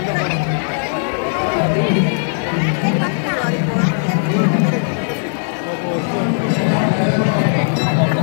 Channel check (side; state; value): right; silent; digital silence